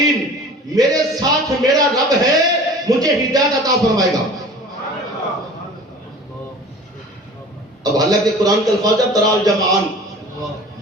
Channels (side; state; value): both; normal; correlation 0.42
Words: میرے ساتھ میرا رب ہے، مجھے ہدایت عطا فرمائے گا۔ اب حالانکہ قرآن کے الفاظ ہے ترا الجمعان،